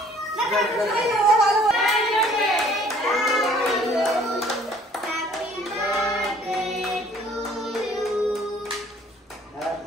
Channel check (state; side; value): normal; both; correlation 0.56